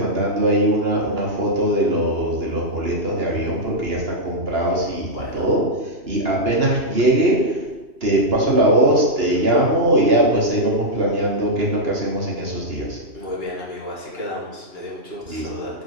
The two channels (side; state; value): left; late; 2.9 ms